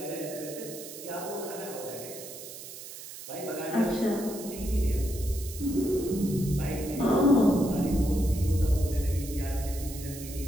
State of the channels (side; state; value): right; noise; hiss, 12 dB below the sound